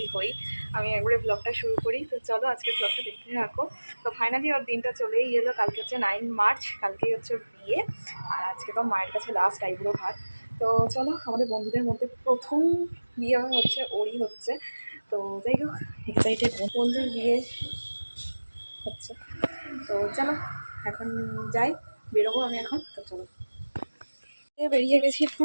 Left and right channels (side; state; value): both; inverted; correlation -1.00